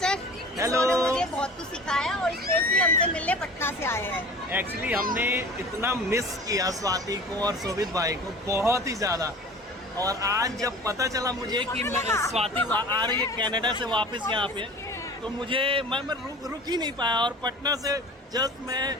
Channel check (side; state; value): both; normal; correlation 0.40